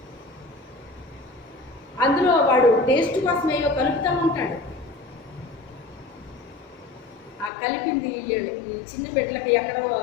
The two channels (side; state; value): right; drops out; at 7.5 s